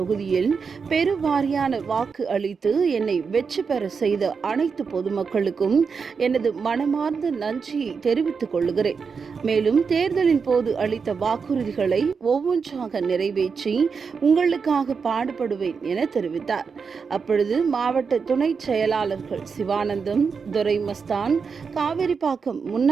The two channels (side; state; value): left; quieter; 5.6 dB